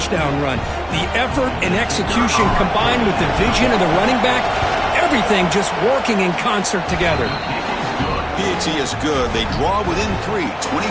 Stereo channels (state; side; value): identical; both; correlation 1.00